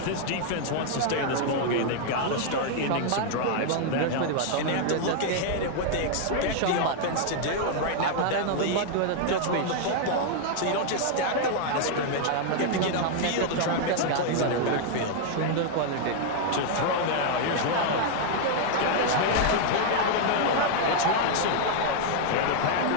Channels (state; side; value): different; both; correlation 0.00